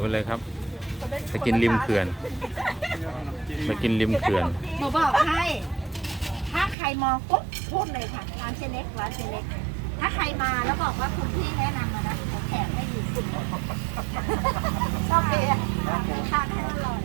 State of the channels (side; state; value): left; drops out; at 6.8 s